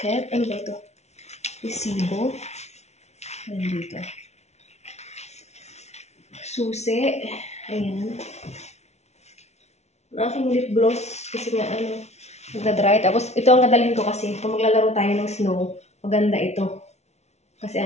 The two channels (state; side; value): late; right; 0.32 ms